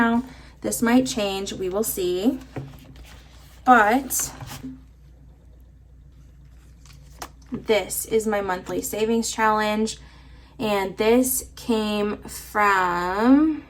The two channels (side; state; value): both; identical; correlation 1.00